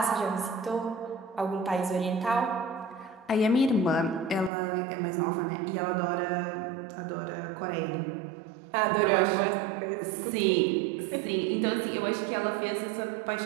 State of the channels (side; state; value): left; drops out; at 4.5 s